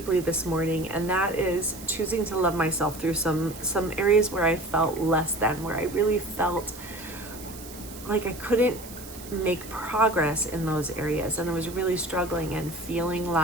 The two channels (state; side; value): noise; right; hiss, 15 dB below the sound